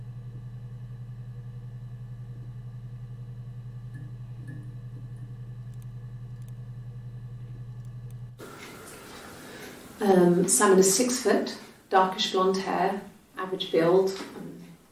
Simon is 6 foot, darkish blonde hair, average build.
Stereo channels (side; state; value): both; identical; correlation 1.00